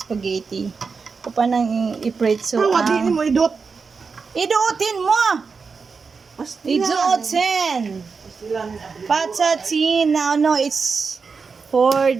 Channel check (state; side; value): quieter; left; 5.0 dB